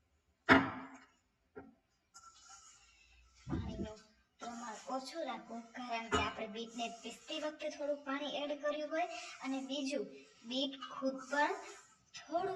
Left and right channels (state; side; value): identical; both; correlation 1.00